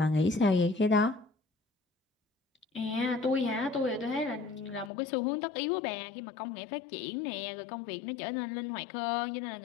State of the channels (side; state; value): right; drops out; at 4.9 s